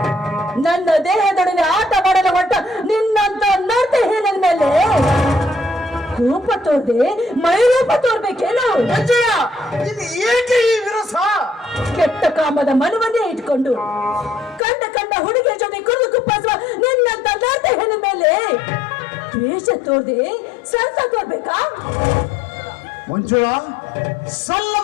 ನನ್ನ ದೇಹದೊಡನೆ ಆಟ ಮಾಡಲು ಹೊಟ್ಟ ನಿನ್ನಂತ ನರ್ತೆ ಹೇಳದ ಮೇಲೆ ಕೋಪ ತೋರ್ದೆ ಮೈರೂಪ ತೋರ್ಬೇಕೇನು? ಇದು ಏಕೆ ಈ ವಿರಸ? ಕೆಟ್ಟ ಕಾಮದ ಮನವನ್ನೇ ಇಟ್ಕೊಂಡು ಕಂಡ ಹುಡುಗಿಯ ಜೊತೆ ಕುಡಿದು ಕುಪ್ಪಿಸುವ ನಿನ್ನಂತ ನರ್ತೆ ಹೆಣ್ಣ ಮೇಲೆ ದ್ವೇಷ ತೋರ್ದೆ ಸರಸ ತೋರ್ಬೇಕಾ? ಮಂಜುಳಾ,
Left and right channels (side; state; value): right; drops out; at 14.6 s